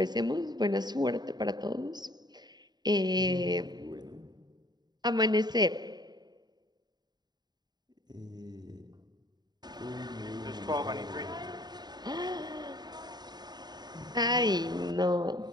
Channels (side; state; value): left; late; 0.20 ms